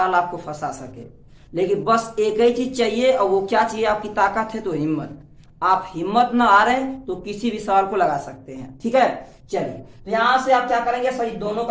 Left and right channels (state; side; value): identical; both; correlation 1.00